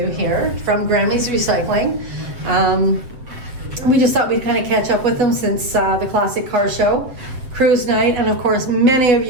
here from Grammie's Recycling. We just thought we'd kind of catch up with them since the Classic Car Show, Cruise Night, and of course many of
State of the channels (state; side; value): late; left; 7.7 ms